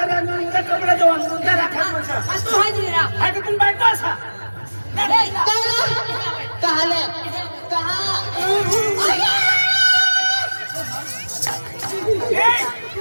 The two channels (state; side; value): inverted; both; correlation -1.00